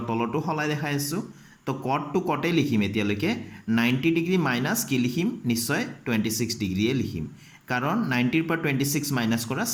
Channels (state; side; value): identical; both; correlation 1.00